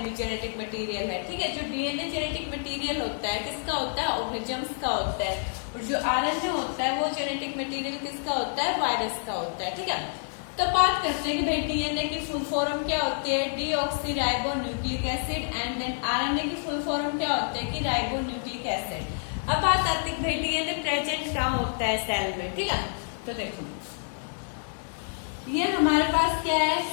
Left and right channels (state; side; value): silent; right; digital silence